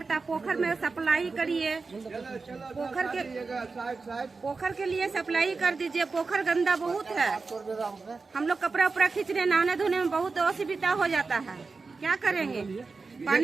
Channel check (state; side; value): quieter; left; 4.3 dB